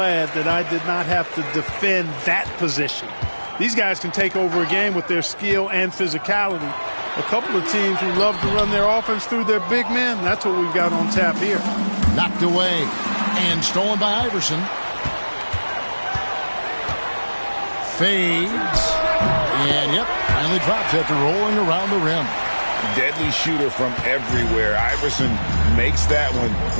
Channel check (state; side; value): inverted; both; correlation -1.00